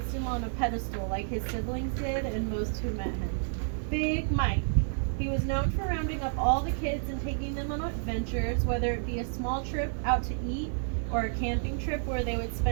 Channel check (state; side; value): silent; left; 58 dB below the other